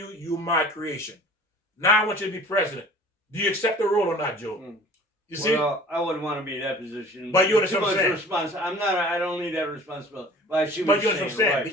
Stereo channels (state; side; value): normal; both; correlation 0.46